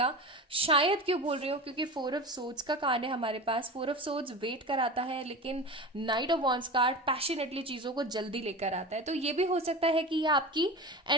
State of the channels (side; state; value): both; normal; correlation 0.29